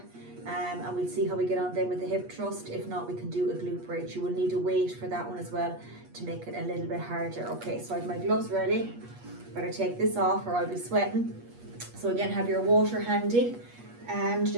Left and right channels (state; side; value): late; left; 8.4 ms